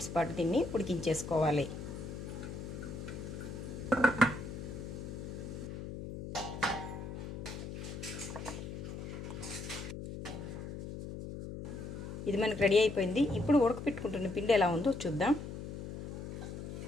పాటు దీన్ని ఉడికించేసుకోవాలి. ఇది మనకు రెడీ అయిపోయింది. ఇప్పుడు ఉడకపెట్టుకుంటున్న పిండి ఎలా ఉందో చూద్దాం.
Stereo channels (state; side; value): noise; left; hum, 8 dB below the sound